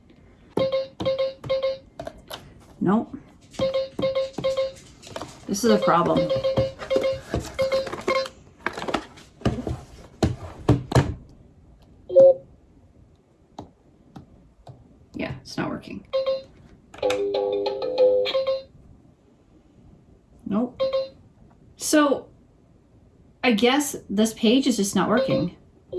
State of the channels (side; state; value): both; identical; correlation 1.00